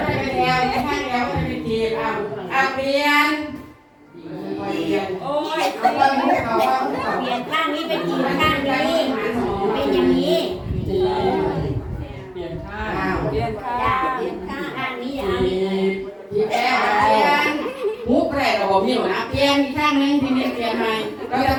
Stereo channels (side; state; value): both; identical; correlation 1.00